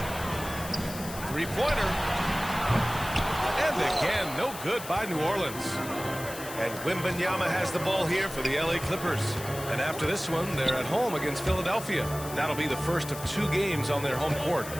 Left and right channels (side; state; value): left; noise; hiss, 12 dB below the sound